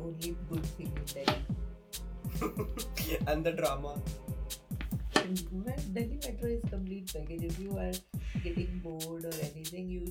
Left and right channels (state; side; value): identical; both; correlation 1.00